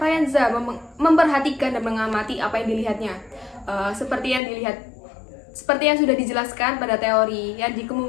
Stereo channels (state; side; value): drops out; right; at 4.4 s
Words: memperhatikan dan mengamati apa yang dilihatnya. Seperti yang sudah dijelaskan pada teori yang